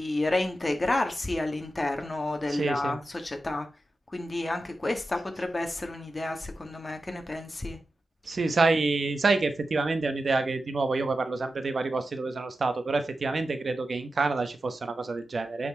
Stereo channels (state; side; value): normal; both; correlation 0.91